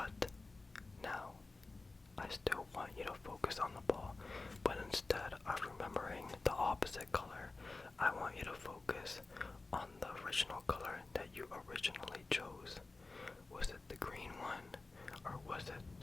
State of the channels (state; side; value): quieter; right; 3.5 dB